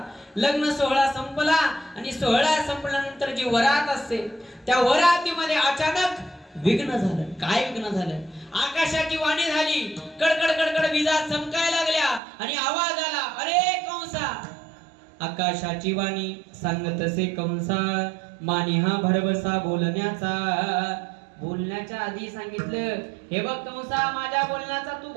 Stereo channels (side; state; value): left; drops out; at 12.2 s